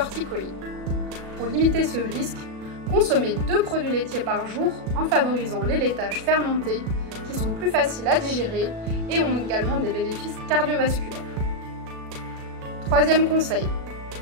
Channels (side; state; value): left; late; 37 ms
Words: Pour limiter ce risque, consommez 2 produits laitiers par jour en favorisant les laitages fermentés qui sont plus faciles à digérer et ont également des bénéfices cardiovasculaires. Troisième conseil,